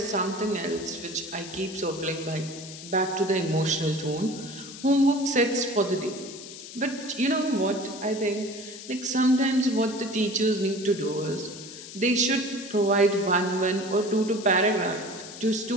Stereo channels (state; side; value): noise; left; hiss, 13 dB below the sound